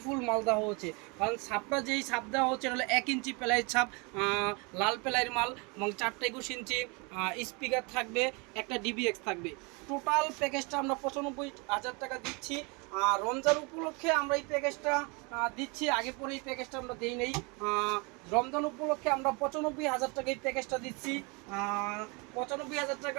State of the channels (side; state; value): left; quieter; 30.2 dB